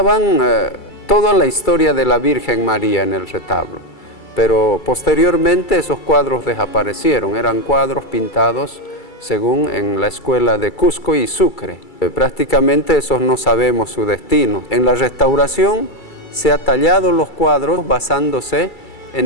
toda la historia de la Virgen María en el retablo, pero posteriormente esos cuadros desaparecieron, eran cuadros pintados según en la escuela de Cusco y Sucre. Prácticamente esos no sabemos su destino. En la restauración se ha tallado los cuadros basándose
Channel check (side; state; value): right; late; 2.3 ms